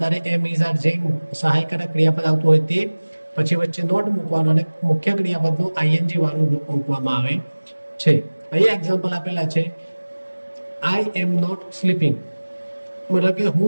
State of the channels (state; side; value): inverted; both; correlation -1.00